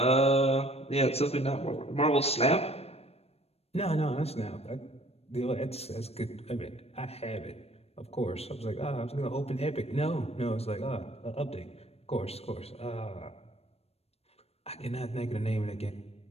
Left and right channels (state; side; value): late; right; 0.29 ms